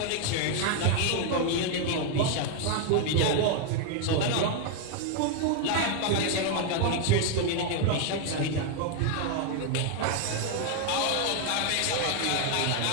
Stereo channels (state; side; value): different; both; correlation 0.01